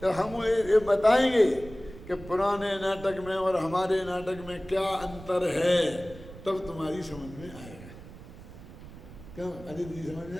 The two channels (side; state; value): right; noise; rumble, 16 dB below the sound